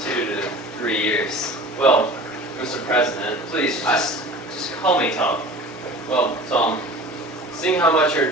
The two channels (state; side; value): normal; both; correlation 0.40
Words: 2 to 3 years? Well, Mr. President, Please, just call me Tom. well, Tom, seeing how much